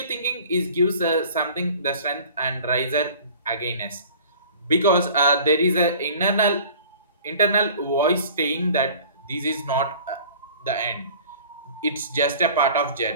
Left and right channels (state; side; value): inverted; both; correlation -0.46